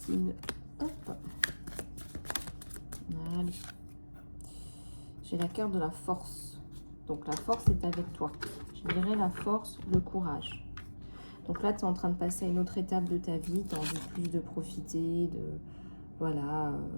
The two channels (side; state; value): both; inverted; correlation -1.00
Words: Hop. Allez. J'ai la carte de la force. Donc la force est avec toi. Je dirais la force, le courage. Donc là, tu es en train de passer à une autre étape de ta vie. Tu as envie plus de profiter, de... Voilà.